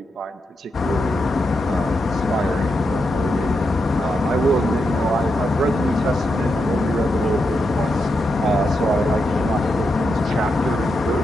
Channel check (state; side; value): normal; both; correlation 0.85